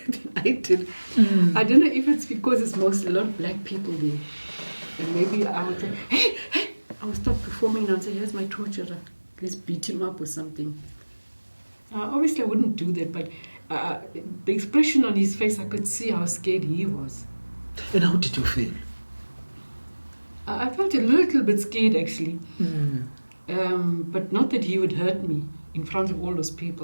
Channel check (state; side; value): inverted; both; correlation -1.00